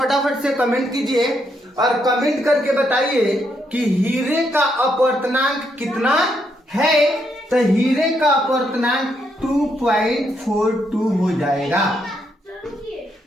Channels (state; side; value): normal; both; correlation 0.77